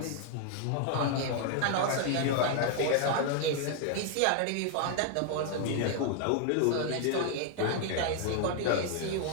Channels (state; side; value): different; both; correlation 0.00